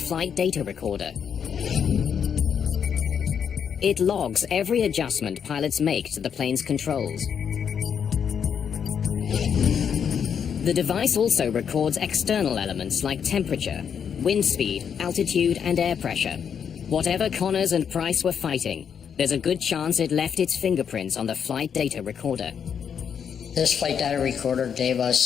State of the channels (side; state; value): right; quieter; 7.6 dB